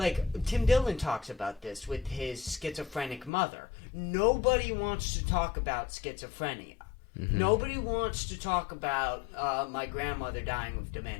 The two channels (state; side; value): drops out; right; at 3.3 s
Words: Tim Dillon talks about this with his schizophrenic mother. Nobody wants to talk about schizophrenia. Mm-hmm. Nobody wants to talk about my grandmother dying of